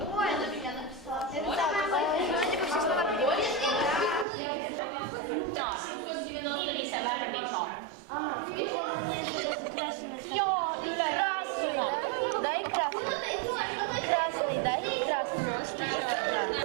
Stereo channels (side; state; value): left; drops out; at 4.2 s